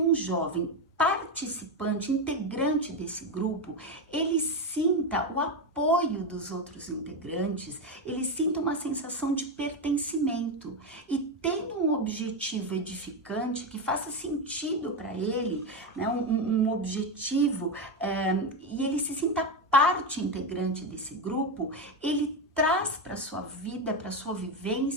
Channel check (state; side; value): normal; both; correlation 0.12